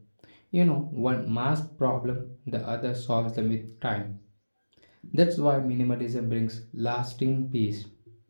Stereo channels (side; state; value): both; inverted; correlation -1.00